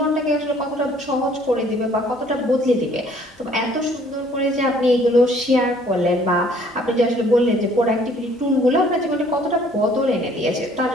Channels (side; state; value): both; normal; correlation 0.59